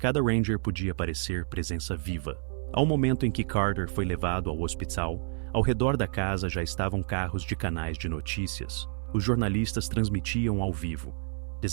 Cada Ranger podia parecer presença viva. Ao momento em que Carter foi levado ao hospital, ao redor da casa já estavam carros de canais de notícias. Os jornalistas transmitiam ao vivo:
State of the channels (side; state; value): left; silent; digital silence